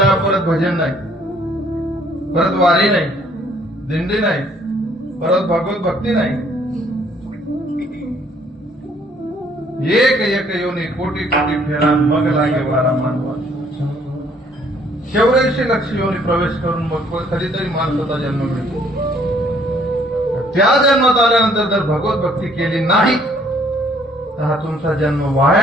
परत भजन नाही, परत वारी नाही, दिंडी नाही, परत भगवत भक्ती नाही. एक एक योनी कोटी कोटी फेरा मग लागे वारा मानवा. 84 लक्ष योनी प्रवेश करून मग कधीतरी माणसाचा जन्म मिळतो. त्या जन्मात आल्यानंतर जर भगवत भक्ती केली नाही तर हा तुमचा जन्म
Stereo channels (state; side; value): normal; both; correlation 0.63